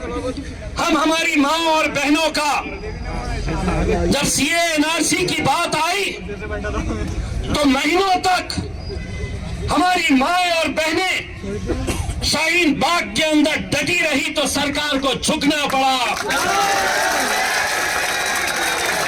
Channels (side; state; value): both; identical; correlation 1.00